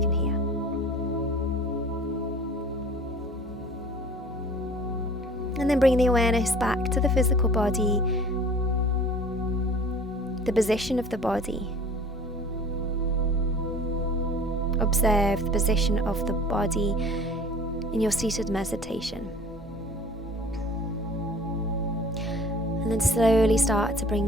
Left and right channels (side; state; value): both; normal; correlation 0.47